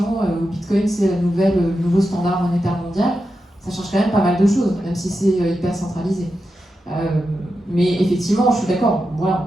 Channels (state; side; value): normal; both; correlation 0.89